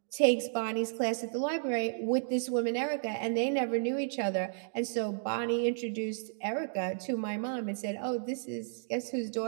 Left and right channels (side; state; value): left; silent; digital silence